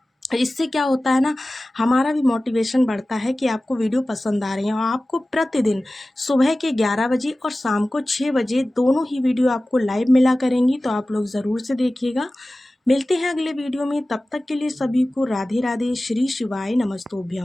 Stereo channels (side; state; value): both; normal; correlation 0.97